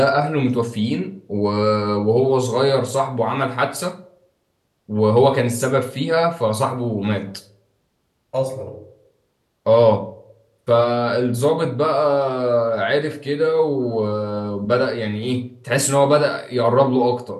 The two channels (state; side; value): identical; both; correlation 1.00